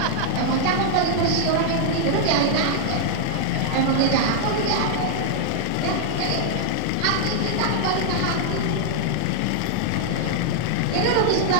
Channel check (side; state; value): both; different; correlation -0.01